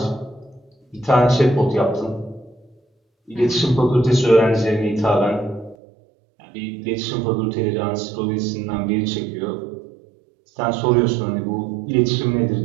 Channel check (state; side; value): drops out; left; at 5.8 s